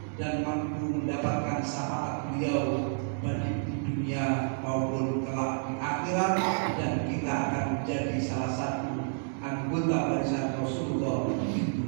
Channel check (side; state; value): left; silent; digital silence